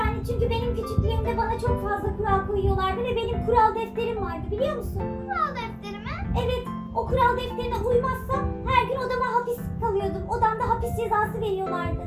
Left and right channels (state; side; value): identical; both; correlation 1.00